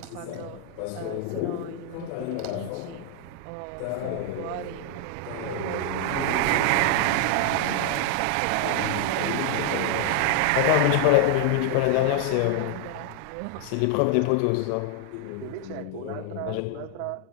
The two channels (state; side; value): different; both; correlation 0.00